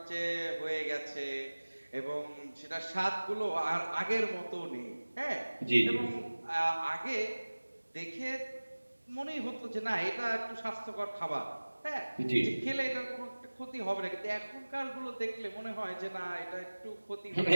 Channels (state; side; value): inverted; both; correlation -1.00